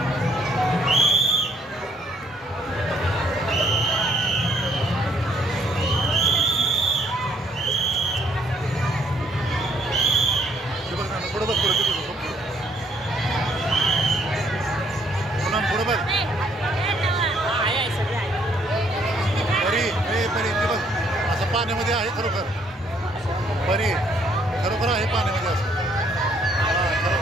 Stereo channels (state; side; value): normal; both; correlation 0.67